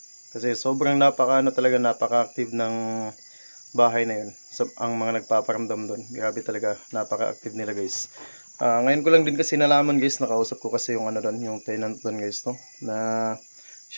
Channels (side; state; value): both; inverted; correlation -1.00